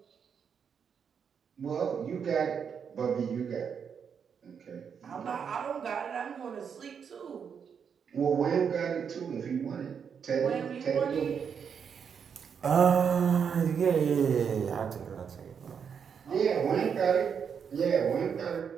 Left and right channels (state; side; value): quieter; left; 7.0 dB